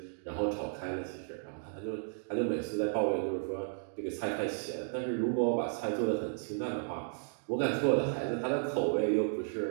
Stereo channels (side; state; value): left; silent; digital silence